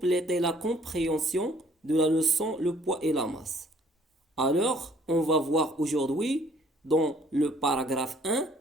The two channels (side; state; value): both; normal; correlation 0.60